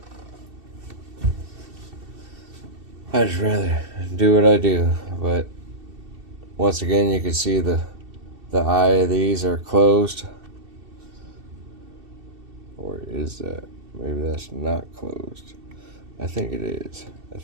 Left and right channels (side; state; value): left; late; 2.7 ms